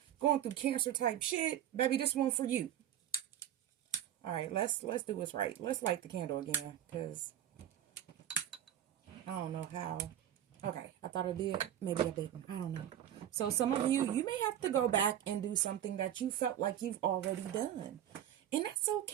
going through Cancer type shit, baby, this one for you. All right, let's do what's right. Let's light the candle again, because I don't know how. Okay, I thought I did. Maybe I didn't. I don't know. So some of you may have to go back and do something that you felt like you've already done. And that's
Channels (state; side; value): quieter; left; 11.2 dB